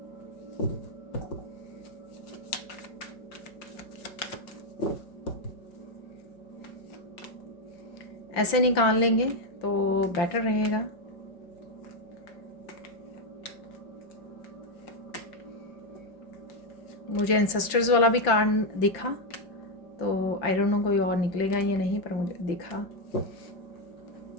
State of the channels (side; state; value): right; late; 5.9 ms